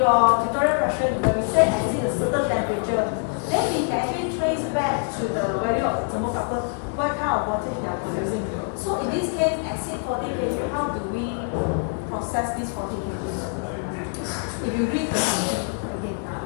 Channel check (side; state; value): right; silent; 57 dB below the other